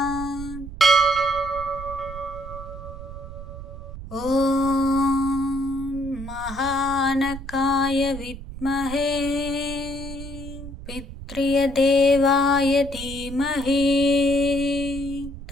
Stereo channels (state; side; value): noise; right; rumble, 11 dB below the sound